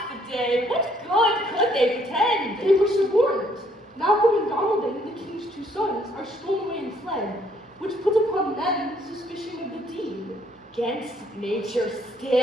the day! What good could they pretend? They were suborned. Malcolm and Donalbain, the king's two sons, are stolen away and fled, which puts upon them suspicion of the deed. Against nature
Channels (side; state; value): both; normal; correlation 0.66